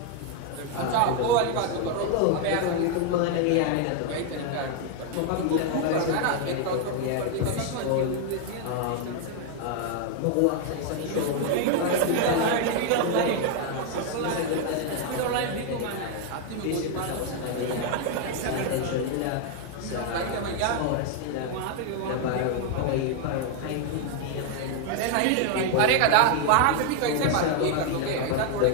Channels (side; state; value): both; different; correlation 0.00